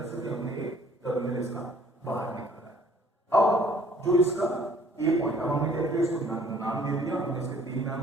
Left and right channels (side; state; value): both; normal; correlation 0.57